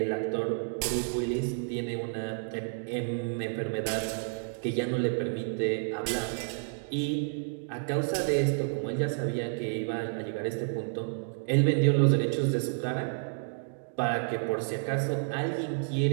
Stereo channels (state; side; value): silent; left; digital silence